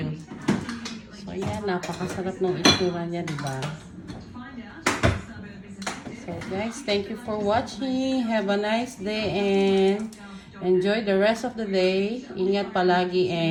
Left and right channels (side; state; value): both; identical; correlation 1.00